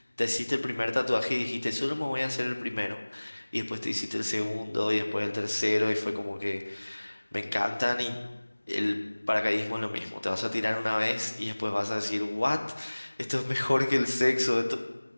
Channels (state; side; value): inverted; both; correlation -1.00